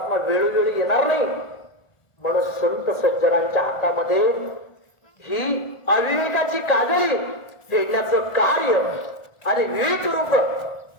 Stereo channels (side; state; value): right; late; 1.4 ms